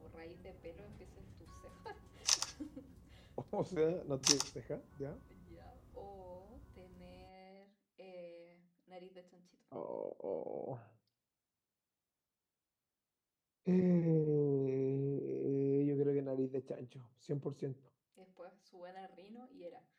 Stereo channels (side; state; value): both; identical; correlation 1.00